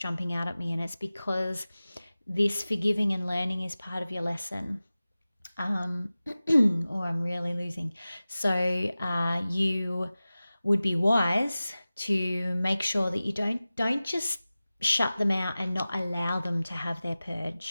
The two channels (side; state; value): both; inverted; correlation -0.97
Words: out at me, and it's because this forgiving and learning is part of your lesson. Or I'm really losing. So you would be wise to make sure that you don't just shut them out and not allow them to have their